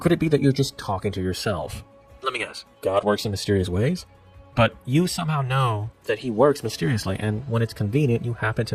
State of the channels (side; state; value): both; identical; correlation 1.00